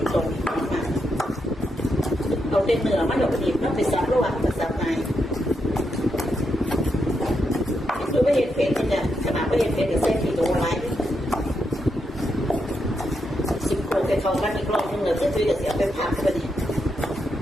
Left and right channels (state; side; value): normal; both; correlation 0.82